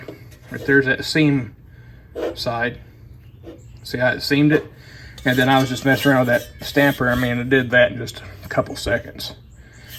that seam side. See how it seamed it? And then I was just messing around with that stamper. I mean, it did that in just a couple seconds.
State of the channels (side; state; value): both; identical; correlation 1.00